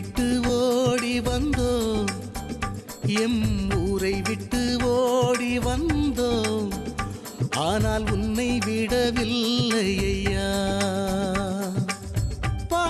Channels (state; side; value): identical; both; correlation 1.00